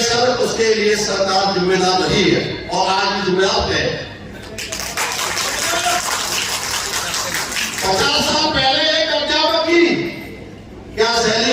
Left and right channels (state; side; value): identical; both; correlation 1.00